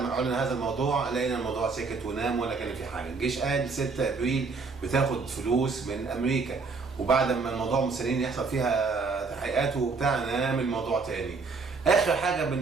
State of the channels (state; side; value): quieter; left; 4.5 dB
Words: اعلن هذا الموضوع لقينا الموضوع سكت ونام ولا كان في حاجه. الجيش قال 6 ابريل بتاخد فلوس من امريكا، وبعد ما الموضوع مستنيين يحصل فيها تحقيقات وبتاع نام الموضوع تاني. اخر حاجه